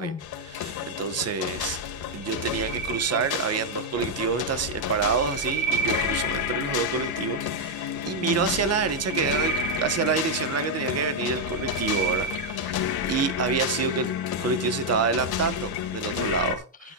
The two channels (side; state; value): both; normal; correlation 0.01